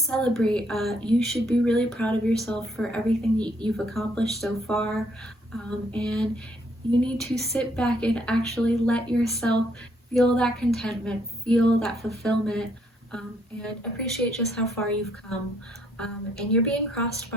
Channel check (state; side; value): normal; both; correlation 0.69